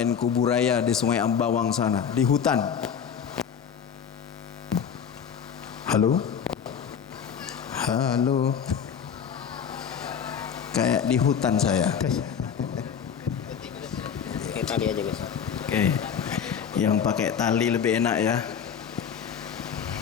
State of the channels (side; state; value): right; quieter; 7.5 dB